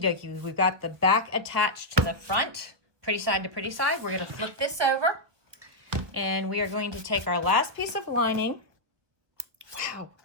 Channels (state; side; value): late; left; 1.5 ms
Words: we've got the back attached to the front, pretty side to pretty side. We're going to flip this over, and we are going to take our last piece of lining. Wow,